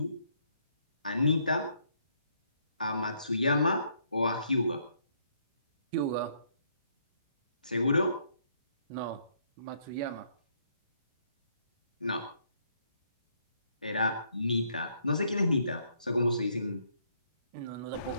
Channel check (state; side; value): inverted; both; correlation -0.71